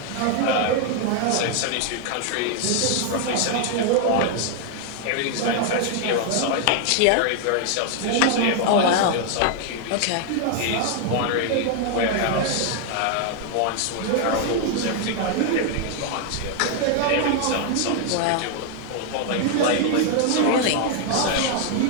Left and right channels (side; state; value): both; different; correlation 0.00